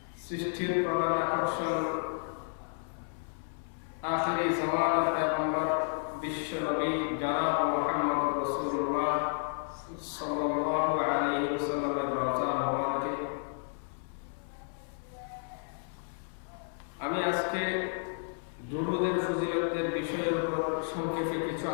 সৃষ্টির প্রধান আকর্ষণ আখিরি জামানার পয়গম্বর বিশ্ব নবী জনাব মুহাম্মদ রাসূলুল্লাহ সাল্লাল্লাহু আলাইহি ওয়াসাল্লামের রওজা মুবারকে আমি আজকে দুরূদের ফজিলতের বিষয়ের উপর সংক্ষেপে কিছু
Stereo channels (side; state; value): right; silent; 57 dB below the other